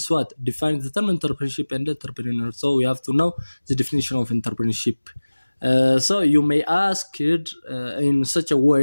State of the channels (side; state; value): both; inverted; correlation -1.00